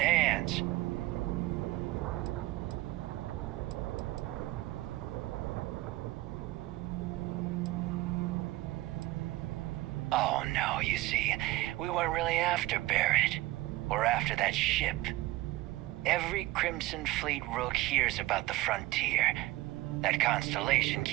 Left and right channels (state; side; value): quieter; left; 18.1 dB